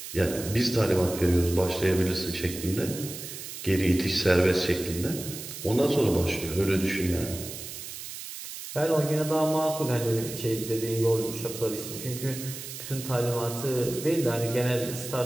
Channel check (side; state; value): right; noise; hiss, 10 dB below the sound